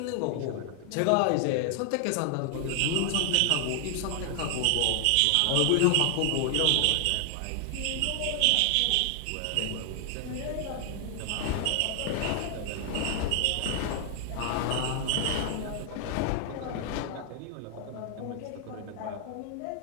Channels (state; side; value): different; both; correlation 0.00